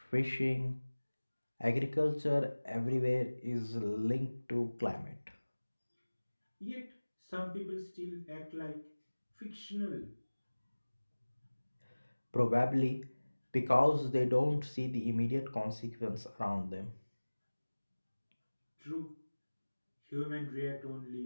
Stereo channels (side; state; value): both; inverted; correlation -1.00